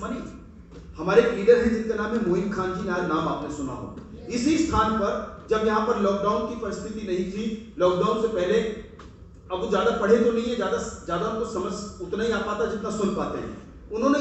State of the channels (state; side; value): identical; both; correlation 1.00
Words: money. हमारे एक leader हैं जिनका नाम है मोइन खान जी, नाम आपने सुना हो। इसी स्थान पर जब यहाँ पर लॉकडाउन की परिस्थिति नहीं थी, लॉकडाउन से पहले, अब वो ज्यादा पढ़े तो नहीं है, ज्यादा उनको समझ उतना ही आ पाता जितना सुन पाते हैं। उन्होंने